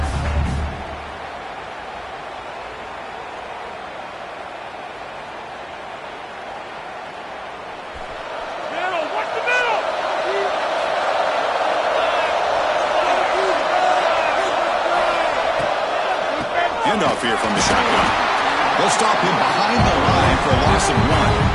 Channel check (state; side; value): identical; both; correlation 1.00